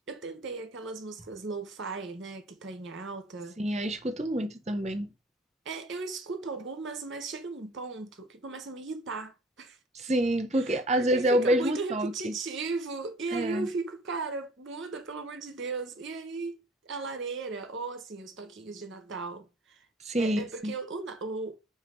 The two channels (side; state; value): both; normal; correlation 0.51